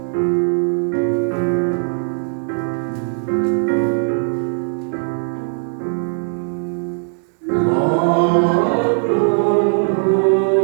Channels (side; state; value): left; silent; 65 dB below the other